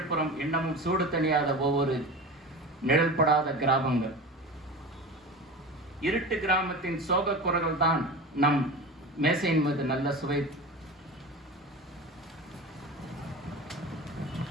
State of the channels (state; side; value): normal; both; correlation 0.30